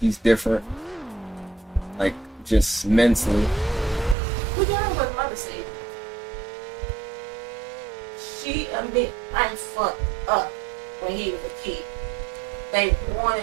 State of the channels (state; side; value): drops out; left; at 4.2 s